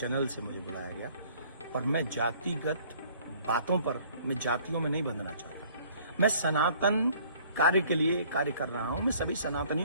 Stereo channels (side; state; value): both; inverted; correlation -0.56